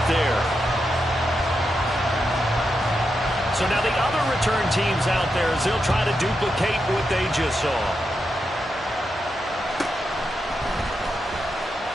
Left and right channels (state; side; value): normal; both; correlation 0.86